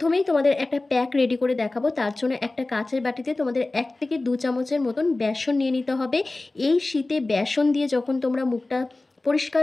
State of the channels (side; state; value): right; quieter; 3.0 dB